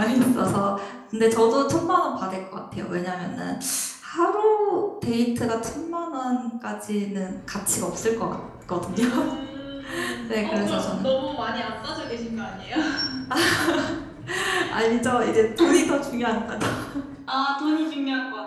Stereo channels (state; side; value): identical; both; correlation 1.00